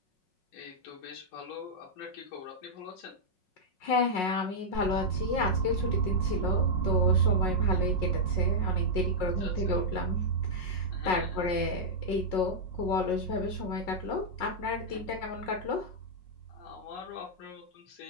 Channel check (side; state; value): right; late; 5.5 ms